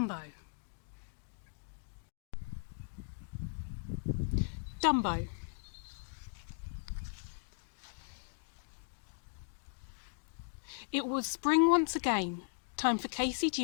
Dumbo. It was spring once again, time for Casey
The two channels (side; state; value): right; silent; digital silence